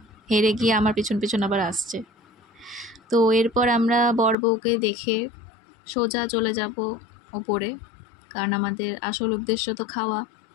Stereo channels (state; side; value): drops out; right; at 4.4 s